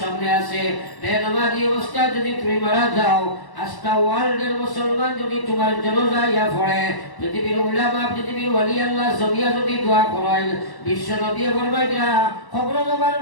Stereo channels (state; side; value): late; right; 1.1 ms